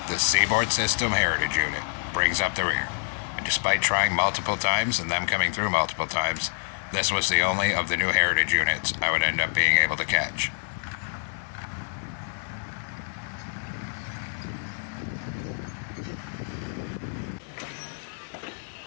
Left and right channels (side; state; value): right; silent; digital silence